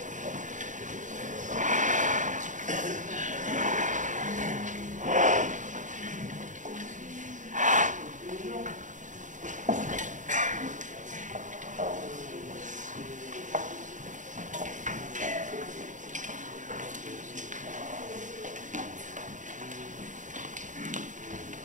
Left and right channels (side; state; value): left; late; 0.36 ms